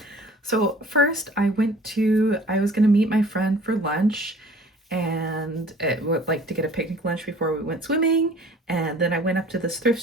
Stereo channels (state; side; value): normal; both; correlation 0.49